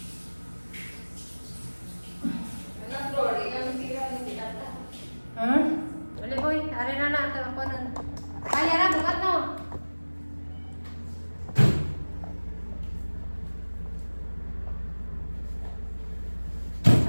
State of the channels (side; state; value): both; inverted; correlation -1.00